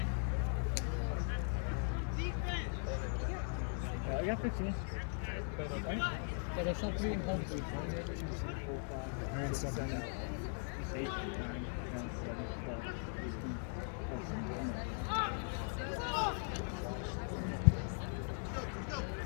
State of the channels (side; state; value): right; silent; 51 dB below the other